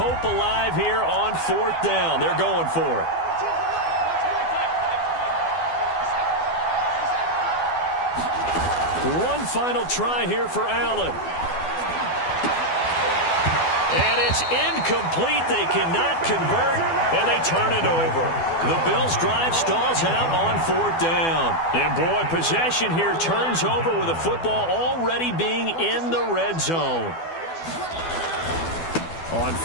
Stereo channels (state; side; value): late; right; 12 ms